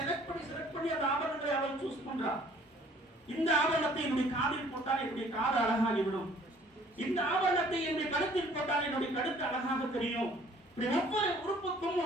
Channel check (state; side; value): normal; both; correlation 0.56